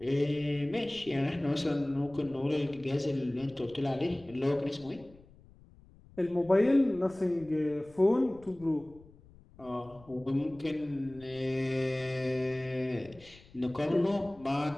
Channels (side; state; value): left; noise; rumble, 24 dB below the sound